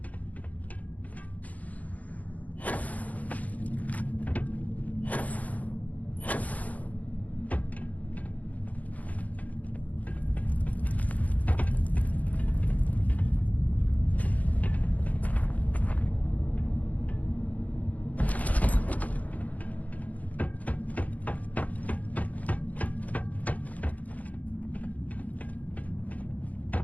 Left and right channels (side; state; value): right; late; 0.074 ms